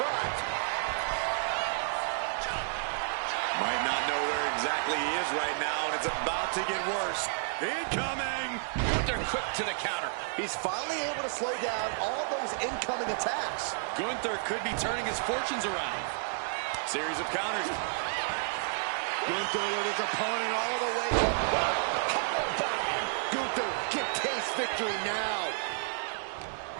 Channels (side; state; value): left; silent; 57 dB below the other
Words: Might not know where exactly he is right now, and it's about to get worse. Incoming! Gunther quick to the counter. He's finally able to slow down all those incoming attacks. Gunther could be turning his fortunes around. Series of counters. Gunther with his opponent all the way up. Gunther can taste victory now.